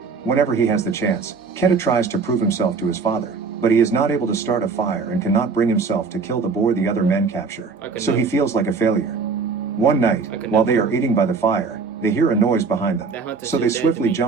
Whenever he has the chance, Keta tries to prove himself to his father, but he is not able to start a fire and cannot bring himself to kill the boar the other men capture, so he feels like a failure. One night, while they are eating by the fire, they hear a noise behind them, so they swiftly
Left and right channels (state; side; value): quieter; left; 4.8 dB